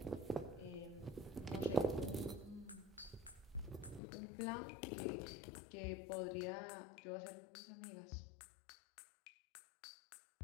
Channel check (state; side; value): drops out; right; at 4.0 s